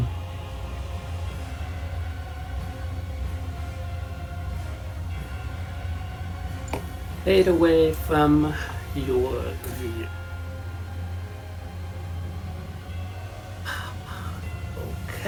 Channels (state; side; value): identical; both; correlation 1.00